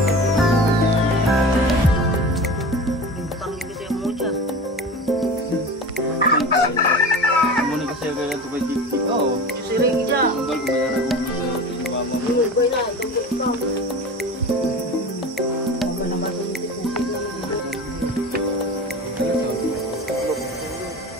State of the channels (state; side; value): normal; both; correlation 0.33